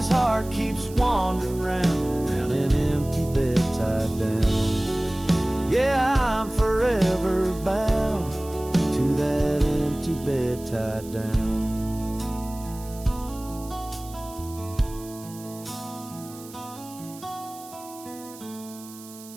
heart keeps wandering round an empty bed tied down. Yeah, I'm forever bound to that empty bed tied down.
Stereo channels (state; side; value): noise; right; hiss, 18 dB below the sound